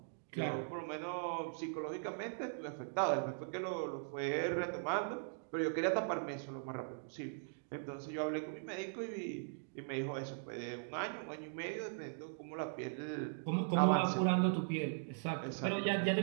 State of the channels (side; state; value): left; silent; digital silence